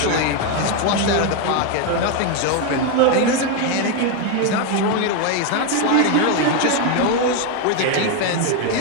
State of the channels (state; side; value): different; both; correlation 0.02